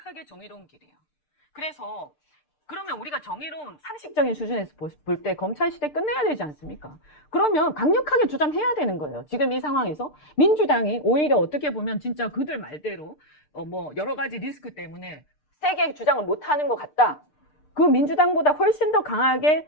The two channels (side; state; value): right; late; 6.7 ms